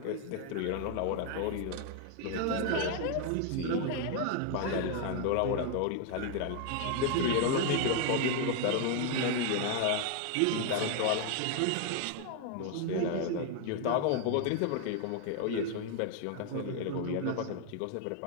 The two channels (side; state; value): both; different; correlation 0.01